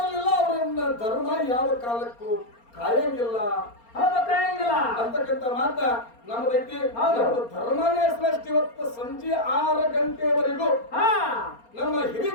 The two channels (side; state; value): right; late; 4.3 ms